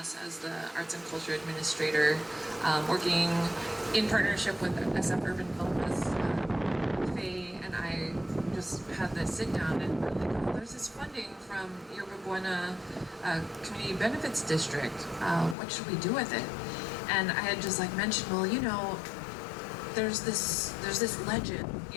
as the Arts and Culture Administrator, working in partnership with SF Urban Film Fest. Faye and I just had this sit down and we're like, oh, there's this funding from Yerba Buena Community Benefits District. What should we do with it? And I had just like mentioned, well, you know, there's this legend,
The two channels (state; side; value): drops out; right; at 15.6 s